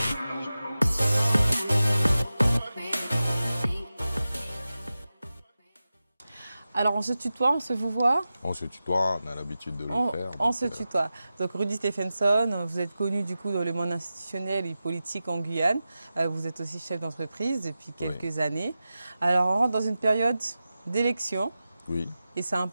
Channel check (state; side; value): inverted; both; correlation -0.94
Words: Alors on se tutoie, on se vous voit? On se tutoie, on a l'habitude de le faire. On se tutoie. Donc Rudy Stephenson, vous êtes connu du coup dans le monde institutionnel et politique en Guyane. Vous êtes aussi chef d'entreprise depuis quelques années. Alors on rentre dans une période d'élection. Oui. Et c'est